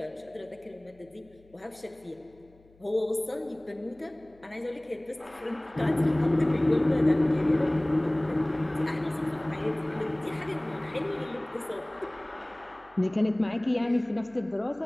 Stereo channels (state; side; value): noise; left; hum, 29 dB below the sound